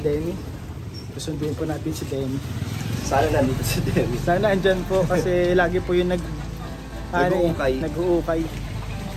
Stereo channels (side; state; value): both; identical; correlation 1.00